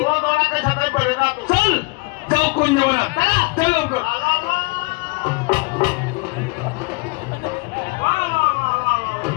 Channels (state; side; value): quieter; right; 28.1 dB